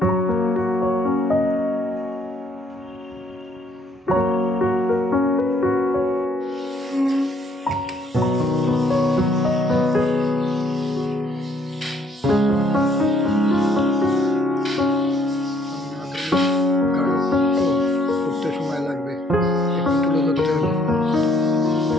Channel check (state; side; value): normal; both; correlation 0.67